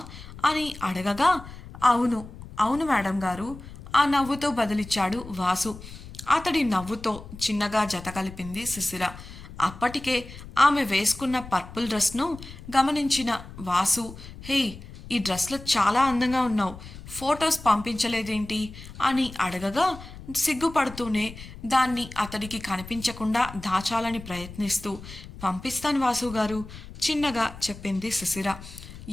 అని అడగగా అవును అవును మేడం గారు ఆ నవ్వుతో బదులిచ్చాడు వాసు. అతడి నవ్వుతో చిన్నగా జత కలిపింది శిశిర. అప్పటికే ఆమె వేసుకున్న పర్పుల్ డ్రెస్ను గమనించిన వాసు హే ఈ డ్రెస్లో చాలా అందంగా ఉన్నావు, ఫొటోస్ పంపించలేదేంటి అని అడగగా సిగ్గుపడుతూనే దాన్ని అతడికి కనిపించకుండా దాచాలని ప్రయత్నిస్తూ పంపిస్తాను వాసు గారు చిన్నగా చెప్పింది శిశిర.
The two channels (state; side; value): noise; left; rumble, 15 dB below the sound